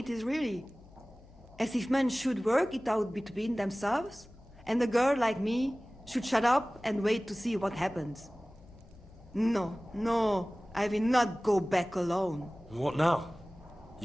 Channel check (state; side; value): noise; left; hum, 23 dB below the sound